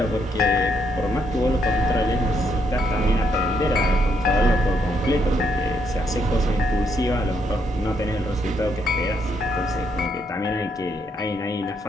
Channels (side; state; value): both; normal; correlation 0.75